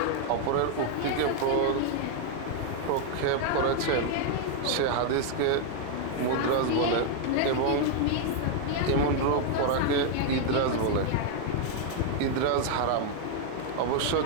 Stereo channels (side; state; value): both; different; correlation 0.00